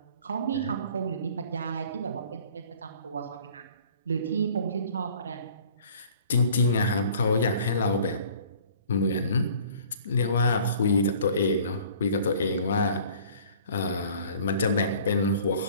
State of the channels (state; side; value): inverted; both; correlation -0.51